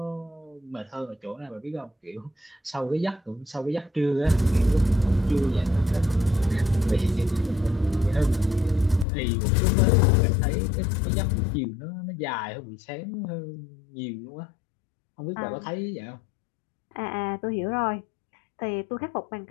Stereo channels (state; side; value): drops out; right; at 9.1 s